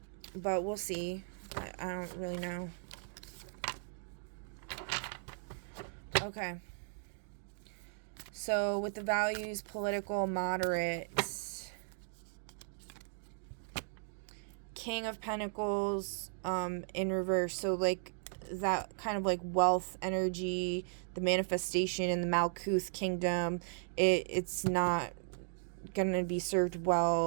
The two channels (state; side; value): silent; left; digital silence